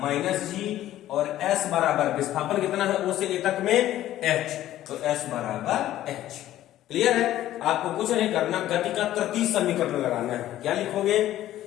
और S बराबर विस्थापन कितना है O से A तक में, H, तो S बराबर H। क्लियर है? आपको कुछ नहीं करना, गति का तृतीय समीकरण लगाना है। क्या लिखोगे,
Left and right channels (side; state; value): right; quieter; 13.4 dB